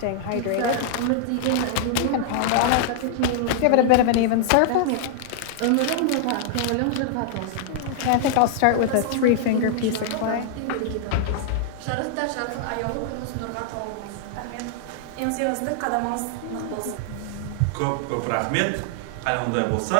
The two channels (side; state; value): both; different; correlation -0.01